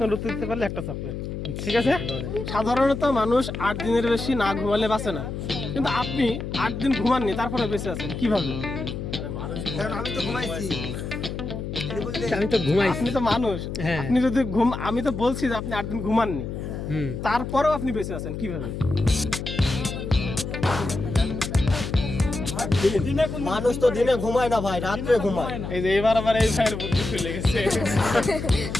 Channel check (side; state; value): left; noise; hum, 6 dB below the sound